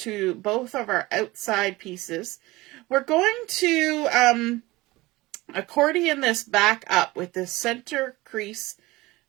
both of our outside pieces. We're going to accordion this back up with the center crease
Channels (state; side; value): quieter; left; 20.4 dB